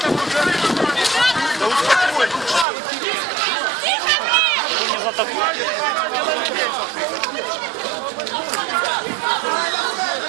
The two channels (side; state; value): left; drops out; at 2.7 s